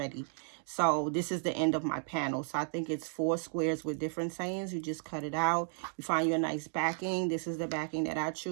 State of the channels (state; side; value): silent; left; 55 dB below the other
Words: so this is the end of my panel. So I think it's 4 squares with different sayings. You just cut it out. You find you a nice backing. This is the backing that I